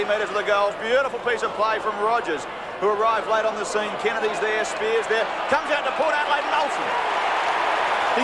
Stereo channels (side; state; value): both; identical; correlation 1.00